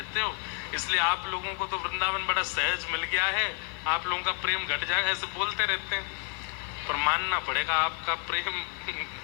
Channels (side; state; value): right; quieter; 39.9 dB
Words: हो, इसलिए आप लोगों को तो वृंदावन बड़ा सहज मिल गया है, आप लोगों का प्रेम घट जाएगा, ऐसे बोलते रहते हैं। पर मानना पड़ेगा आपका प्रेम